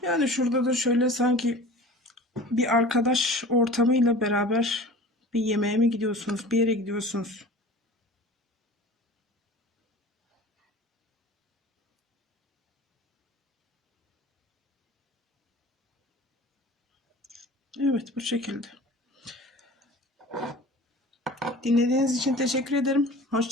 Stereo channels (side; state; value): both; normal; correlation 0.40